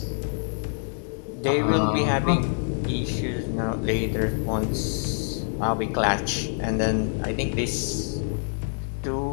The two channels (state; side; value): silent; right; 61 dB below the other